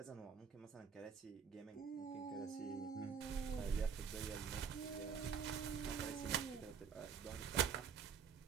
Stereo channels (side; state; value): left; quieter; 6.7 dB